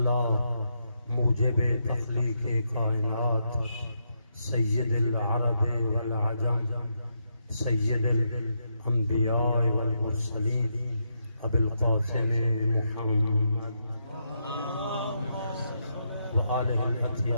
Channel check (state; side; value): inverted; both; correlation -0.81